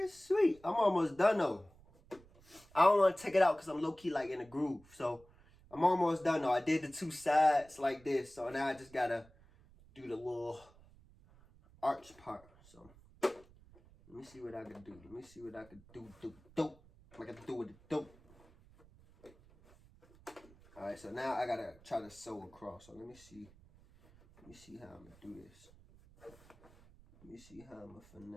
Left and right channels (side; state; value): right; noise; rumble, 25 dB below the sound